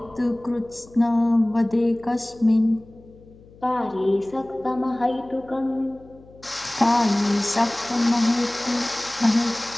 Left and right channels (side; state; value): left; noise; hum, 24 dB below the sound